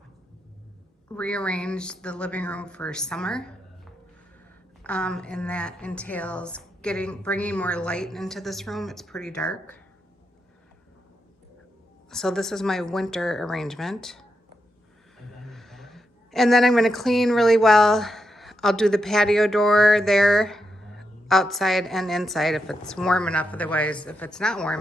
rearrange the living room for summer, and that entails bringing more light into this room. It's pretty dark. So this is my winter arrangement. And then I'm going to clean really well. I'll do the patio door there, outside and inside if it's warm enough. Otherwise, if it's not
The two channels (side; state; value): both; normal; correlation 0.84